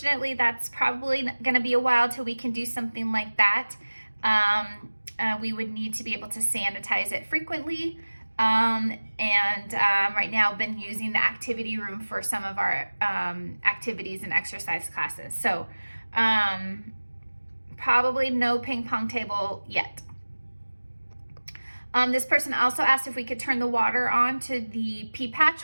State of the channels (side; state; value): both; inverted; correlation -1.00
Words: that's probably going to be a while till we can do something like that. We would need to be able to sanitize it frequently. Right now I've been using the activity room for some of our activities and exercise classes. So probably no ping pong table yet. This person also asked if we could turn the water on to the pea patch,